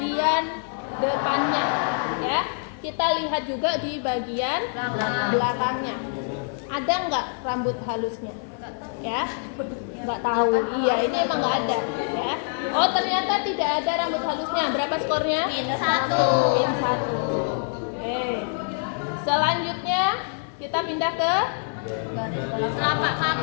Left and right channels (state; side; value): silent; right; 62 dB below the other